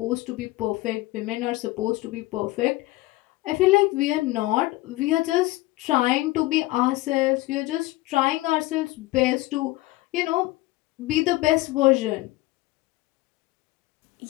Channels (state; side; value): quieter; right; 19.4 dB